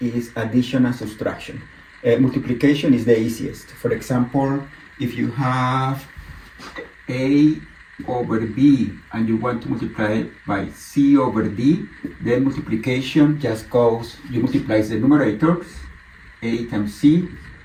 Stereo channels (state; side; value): identical; both; correlation 1.00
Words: addition and subtraction. Multiplication is the easiest. For example, if you have a over b and you want to multiply it by c over d, then multiplication just goes, you multiply the numerators, a times c